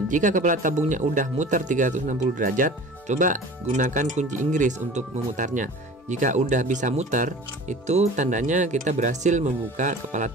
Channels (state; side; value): normal; both; correlation 0.41